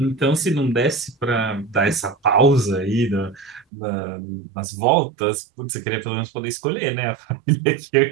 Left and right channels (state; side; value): drops out; left; at 3.7 s